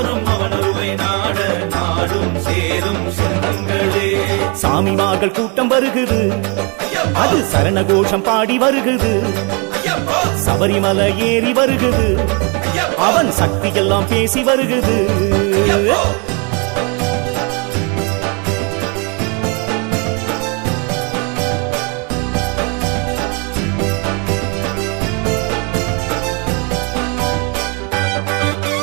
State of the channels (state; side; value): quieter; left; 33.7 dB